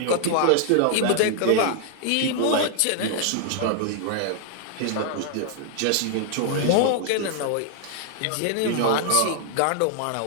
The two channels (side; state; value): both; different; correlation 0.00